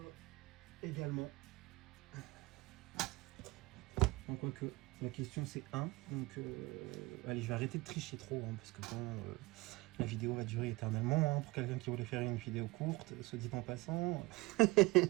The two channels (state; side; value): quieter; left; 22.3 dB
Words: Également. En quoi que... La question c'est 1, donc allez, je vais arrêter de tricher trop, hein, parce que bon, la vidéo va durer éternellement, hein, pour quelqu'un qui voulait faire une vidéo courte, soit dit en passant.